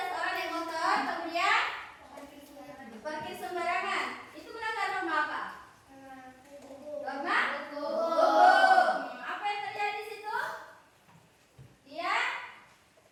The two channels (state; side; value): identical; both; correlation 1.00